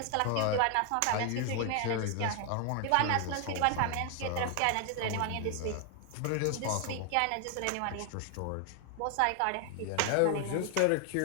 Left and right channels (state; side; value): different; both; correlation 0.00